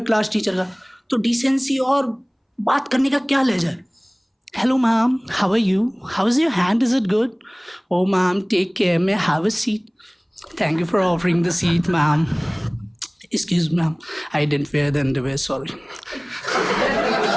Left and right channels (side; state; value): both; identical; correlation 1.00